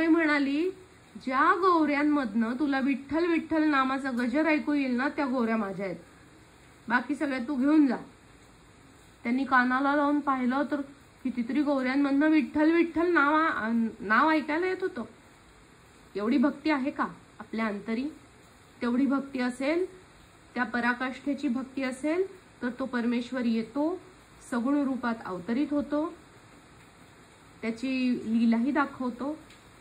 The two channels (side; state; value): both; identical; correlation 1.00